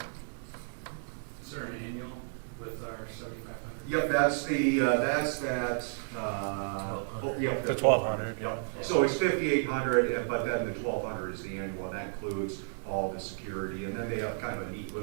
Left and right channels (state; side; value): silent; left; digital silence